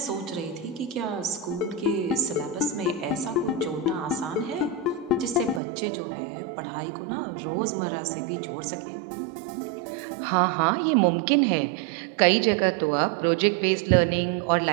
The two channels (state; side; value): drops out; left; at 5.6 s